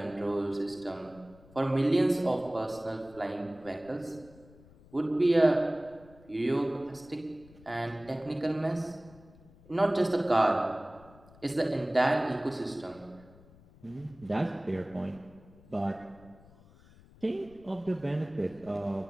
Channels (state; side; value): noise; left; rumble, 24 dB below the sound